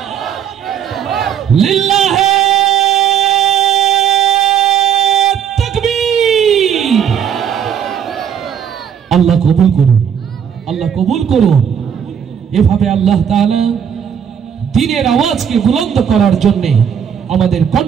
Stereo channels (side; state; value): left; quieter; 8.4 dB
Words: লিল্লাহে তাকবীর। আল্লাহ কবুল করুন, আল্লাহ কবুল করুন। এভাবে আল্লাহ তাআলা দ্বীনের আওয়াজকে বুলন্দ করার জন্য আমাদের